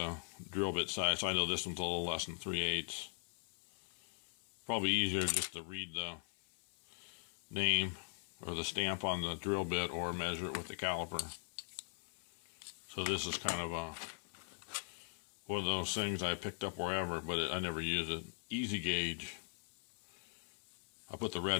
drill bit size. So I know this one's a little less than 3/8. Probably easier just to read the name or the stamp on the drill bit or measure it with the caliper. So this is kind of one of those things I picked up wherever, but I never use it. Easy gauge. I put the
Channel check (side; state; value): right; silent; 51 dB below the other